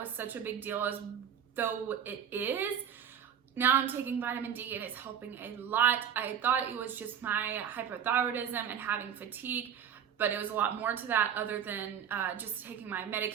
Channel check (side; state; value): left; quieter; 8.6 dB